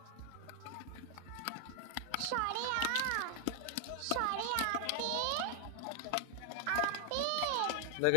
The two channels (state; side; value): different; both; correlation 0.00